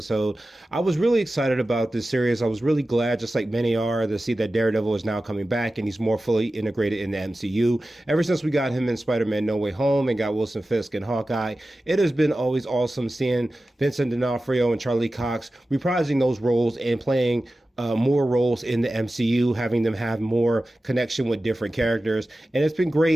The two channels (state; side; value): normal; both; correlation 0.95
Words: I was really excited about this series. I was really glad, just like many are, to see that Daredevil is now coming back and he's more fully integrated in the MCU. Ever since we got him in Spider-Man No Way Home and got Wilson Fisk and Hawkeye, it has been always awesome seeing Vincent D'Onofrio and Charlie Cox reprising those roles and playing more roles in the MCU, having them have more connection with different characters. And it's been